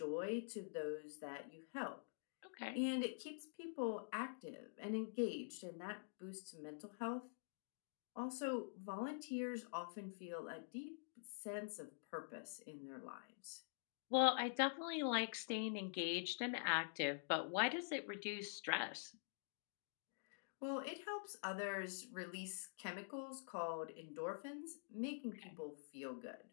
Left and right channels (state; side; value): silent; right; digital silence